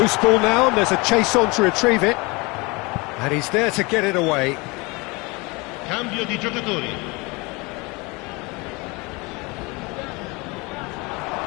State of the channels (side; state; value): right; quieter; 26.2 dB